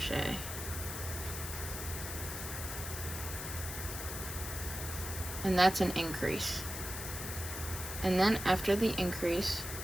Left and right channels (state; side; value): noise; left; hiss, 6 dB below the sound